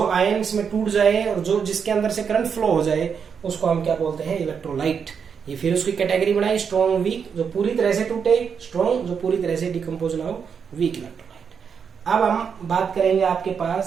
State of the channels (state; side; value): quieter; left; 6.7 dB